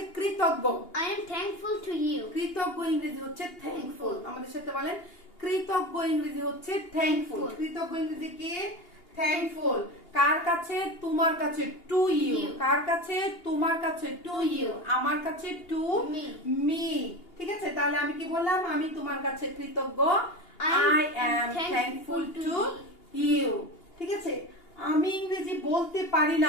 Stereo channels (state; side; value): late; right; 2.8 ms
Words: কৃতজ্ঞ। I am thankful to you. কৃতজ্ঞ ইংরেজি হচ্ছে থ্যাঙ্কফুল। আমাদের সাথে বলেন কৃতজ্ঞ ইংরেজি হচ্ছে থ্যাঙ্কফুল। কৃতজ্ঞ ইংরেজি কি? থ্যাঙ্কফুল। কার কাছে? তোমার কাছে টু ইউ। কার কাছে? তোমার কাছে টু ইউ। আমার কাছে টু মি। ঠিক আছে, তাহলে আমি কি বললাম? আমি তোমার কাছে কৃতজ্ঞ। I am thankful to you। ঠিক আছে, আমি ইংরেজি বলতে পারি